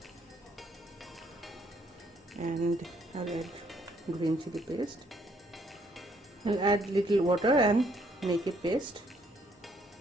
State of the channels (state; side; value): normal; both; correlation 0.68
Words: and I'll add green chili paste. I'll add little water and make it paste.